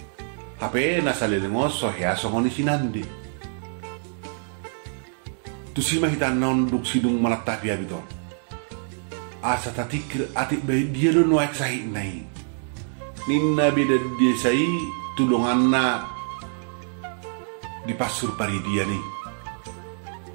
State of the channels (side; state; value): left; silent; digital silence